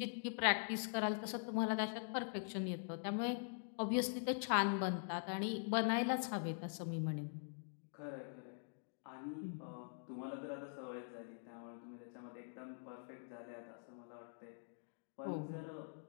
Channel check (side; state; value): right; silent; digital silence